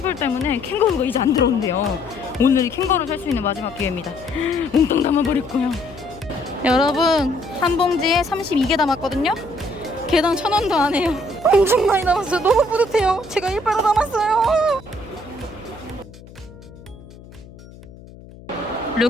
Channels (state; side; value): noise; left; hum, 19 dB below the sound